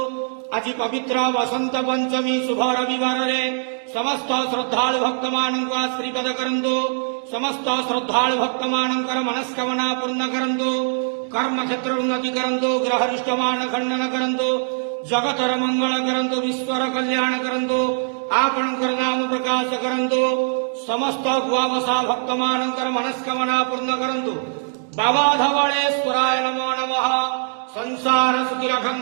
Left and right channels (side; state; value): left; silent; digital silence